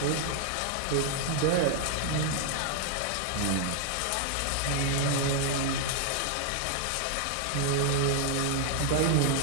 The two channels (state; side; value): different; both; correlation 0.00